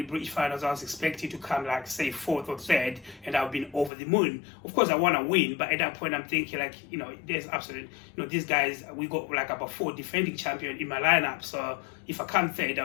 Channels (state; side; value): drops out; right; at 3.9 s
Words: British finals I was expected to come like say 4th or 3rd, and I've been over the moon. Of course I want to win, but at that point I'm thinking like, there's absolutely, these guys, we got like about 4 defending champions in my lineup, so if I come 3rd